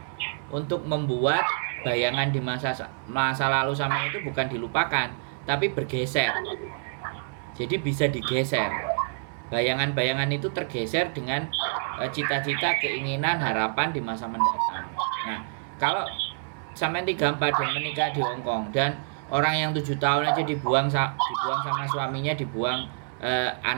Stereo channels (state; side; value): silent; left; digital silence